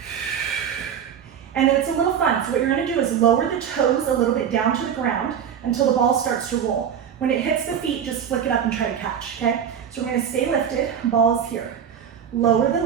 And then it's a little fun. So what you're gonna do is lower the toes a little bit down to the ground until the ball starts to roll. When it hits the feet, just flick it up and try to catch, okay? So we're gonna stay lifted, ball's here. Lower the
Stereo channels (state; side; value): quieter; left; 8.4 dB